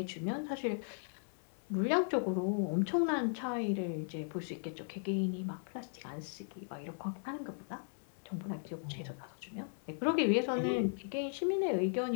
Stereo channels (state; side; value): silent; right; 53 dB below the other